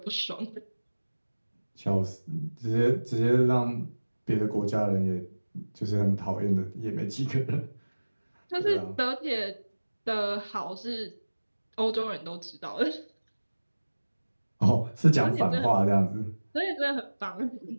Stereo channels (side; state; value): both; inverted; correlation -1.00